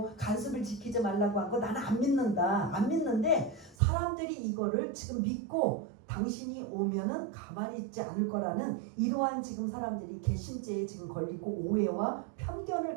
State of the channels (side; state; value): left; drops out; at 3.8 s